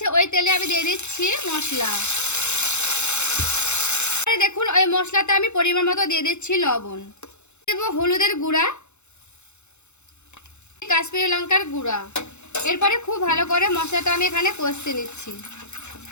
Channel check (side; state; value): right; late; 0.82 ms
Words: ওই তেলে আমি দিয়ে দিচ্ছি মশলা। দেখুন ওই মশলাটা আমি পরিমাণ মতো দিয়ে দিচ্ছি লবণ, দেব হলুদের গুঁড়া, কাশ্মীরি লঙ্কার গুঁড়া। এরপরে খুব ভালো করে মশলাটা আমি এখানে কষতে নিচ্ছি।